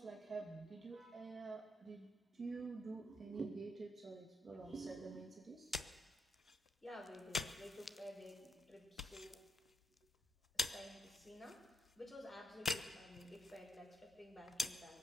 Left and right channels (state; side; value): normal; both; correlation 0.82